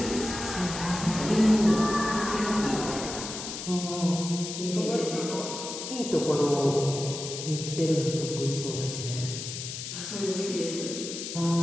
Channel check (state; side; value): noise; left; hiss, 7 dB below the sound